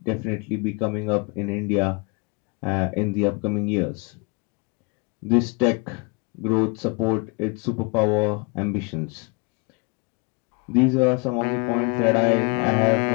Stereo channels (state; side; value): quieter; right; 31.1 dB